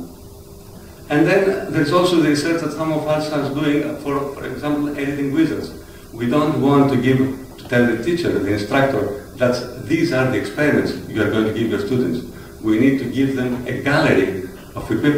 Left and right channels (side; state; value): both; identical; correlation 1.00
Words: And then there's also the research that some of us are doing for example, editing wizards. We don't want to give to tell the teacher, the instructor, that these are the experiments you are going to give your students. We need to give them a gallery of